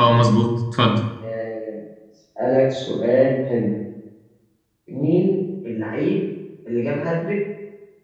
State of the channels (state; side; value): identical; both; correlation 1.00